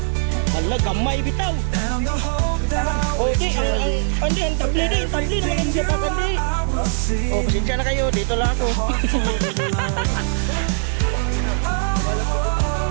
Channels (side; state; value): left; silent; 65 dB below the other